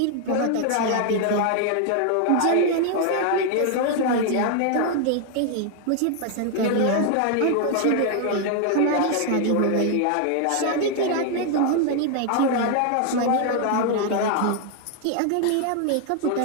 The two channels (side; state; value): both; different; correlation 0.00